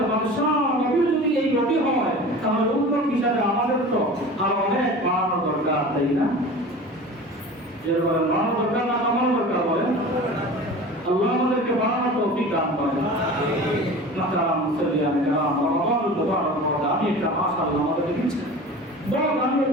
বাদশা নবী যদি এই গতি হয়, তাহলে উত্তর হিসাবে আমাদের তো আরো অনেক বাড়ানো দরকার, তাই না? যেরকম বাড়ানো দরকার না কমানো দরকার বলেন? আল্লাহ আমাদেরকে বাড়ানোর তৌফিক দান করেন। মাতারাম মুসল্লিয়ান কিরাম, রমাদানুল মুবারক বড় আমি একটা মাশাআল্লাহ আমাদেরকে দিচ্ছেন, বড় আমি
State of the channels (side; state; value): both; normal; correlation 0.37